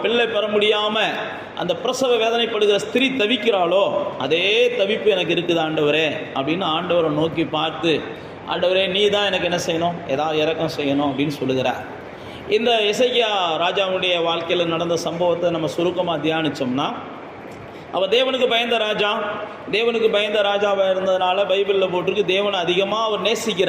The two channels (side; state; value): both; identical; correlation 1.00